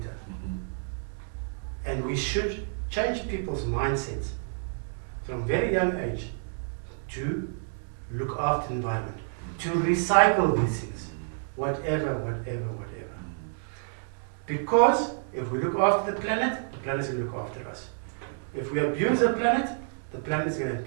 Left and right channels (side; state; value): left; silent; digital silence